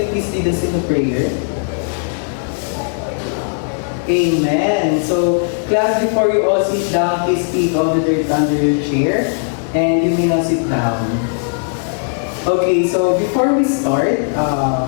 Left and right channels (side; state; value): right; silent; 66 dB below the other